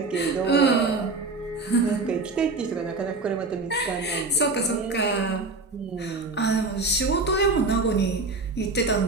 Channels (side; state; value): left; quieter; 3.6 dB